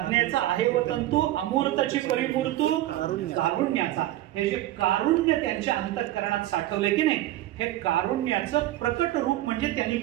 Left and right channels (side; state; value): left; quieter; 14.9 dB